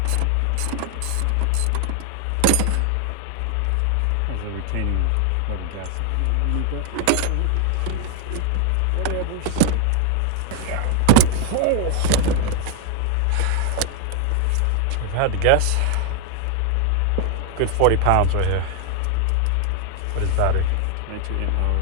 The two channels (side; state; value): both; different; correlation 0.01